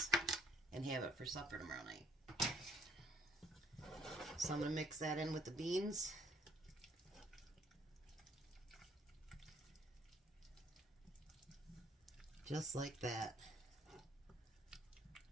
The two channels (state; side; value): normal; both; correlation 0.62